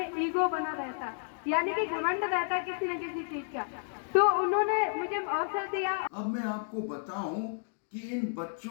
ईगो बना रहता, यानी कि घमंड रहता किसी न किसी चीज का। तो उन्होंने मुझे अवसर दिया। अब मैं आपको बताऊं कि इन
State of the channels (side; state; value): right; silent; 57 dB below the other